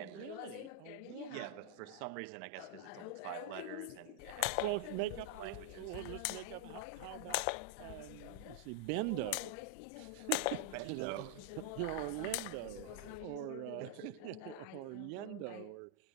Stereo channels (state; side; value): different; both; correlation -0.01